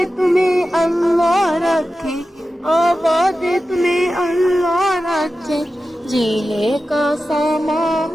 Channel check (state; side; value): normal; both; correlation 0.93